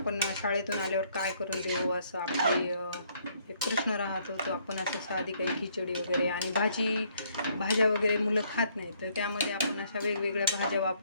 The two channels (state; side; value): inverted; both; correlation -0.67